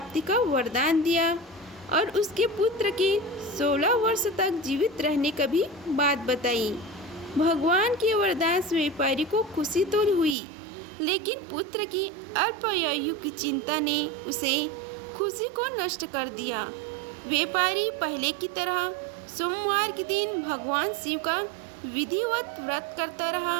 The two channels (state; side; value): drops out; left; at 10.4 s